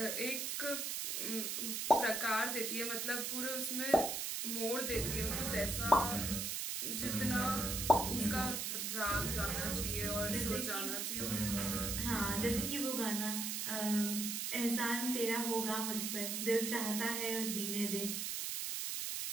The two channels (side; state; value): right; noise; hiss, 1 dB below the sound